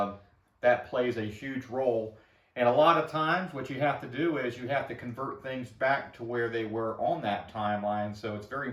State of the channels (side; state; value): both; identical; correlation 1.00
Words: plays a huge role. And a lot of times what you have to do is you have to convert things back to where they were on that timeline. So it's very